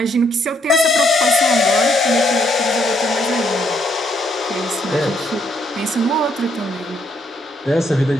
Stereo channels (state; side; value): normal; both; correlation 0.72